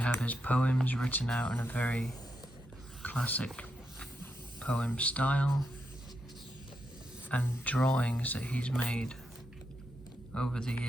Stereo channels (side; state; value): both; normal; correlation 0.83